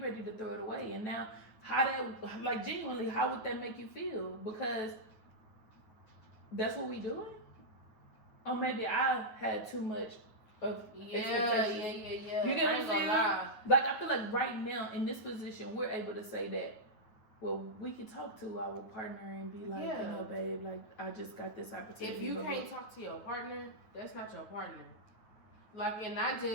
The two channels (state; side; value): late; right; 9.3 ms